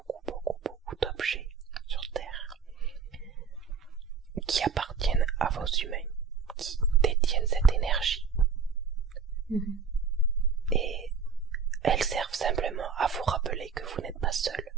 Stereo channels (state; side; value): quieter; left; 5.7 dB